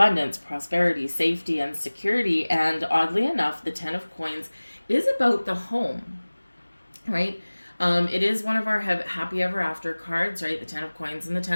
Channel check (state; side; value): inverted; both; correlation -1.00